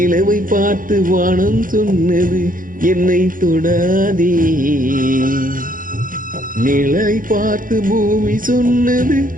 பார்த்து வானம் சொன்னது என்னை தொடாதே. நிழலை பார்த்து பூமி சொன்னது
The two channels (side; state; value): left; late; 0.40 ms